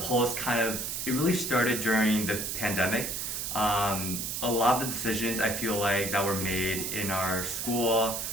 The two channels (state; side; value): noise; right; hiss, 3 dB below the sound